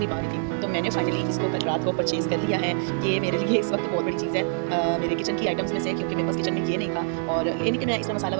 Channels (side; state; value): left; silent; digital silence